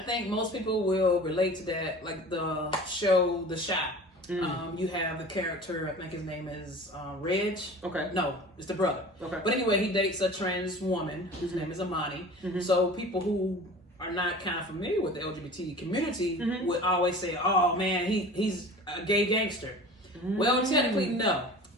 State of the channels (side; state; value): both; normal; correlation 0.39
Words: most people will relate to that, like the show The Shot. You have the character, I think his name is Reg. Okay. No, it's the brother. Okay. But anyway, he dates a trans woman whose name is Amani. So people who are not kind of familiar with the LGBT community would always say, oh man, he's a gay gangster. Well, technically, no,